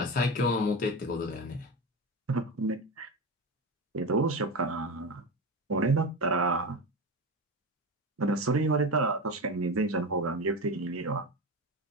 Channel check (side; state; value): both; normal; correlation 0.22